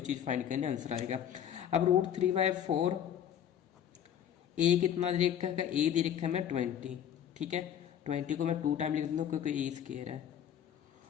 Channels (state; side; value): quieter; right; 9.7 dB